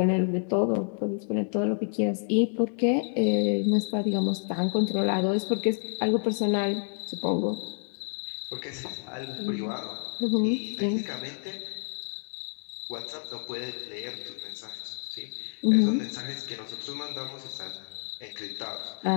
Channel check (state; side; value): silent; right; 59 dB below the other